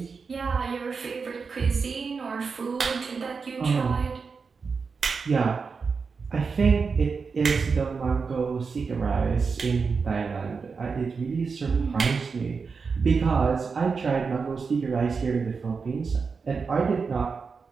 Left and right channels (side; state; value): left; quieter; 5.1 dB